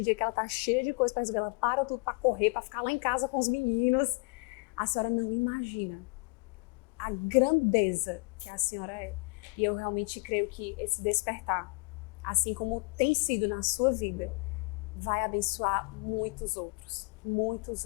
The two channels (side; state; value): right; quieter; 31.1 dB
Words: dia que ela tá cheia de coisa para resolver, ela para tudo para correr, para ficar lá em casa com os meninos. A senhora não imagina a grandeza que a senhora é. E eu realmente creio que esse despertar, assim como tem sido na sua vida, vai abençoar muitos outros,